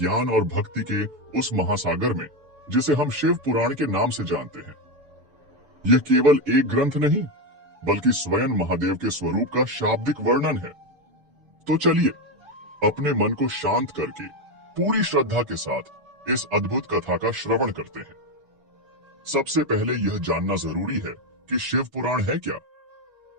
और भक्ति के उस महासागर में जिसे हम शिव पुराण के नाम से जानते हैं। यह केवल एक ग्रंथ नहीं बल्कि स्वयं महादेव के स्वरूप का शाब्दिक वर्णन है। तो चलिए अपने मन को शांत करके पूरी श्रद्धा के साथ इस अद्भुत कथा का श्रवण करते हैं। सबसे पहले यह जानना जरूरी है कि शिव पुराण है क्या।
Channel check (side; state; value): left; late; 7.0 ms